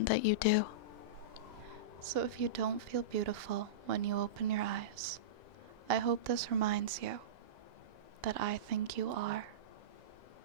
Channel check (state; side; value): late; left; 2.0 ms